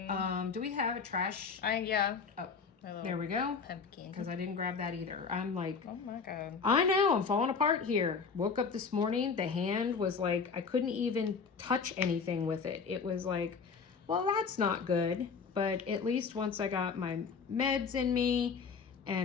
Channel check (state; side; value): quieter; right; 5.5 dB